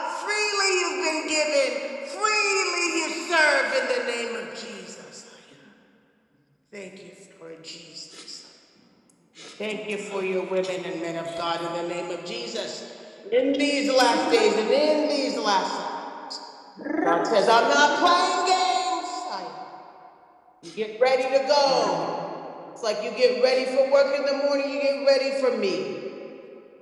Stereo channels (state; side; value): identical; both; correlation 1.00